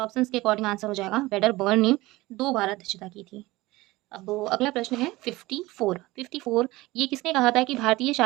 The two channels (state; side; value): quieter; left; 19.7 dB